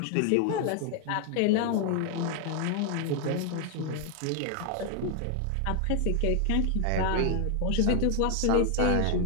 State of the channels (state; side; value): different; both; correlation 0.00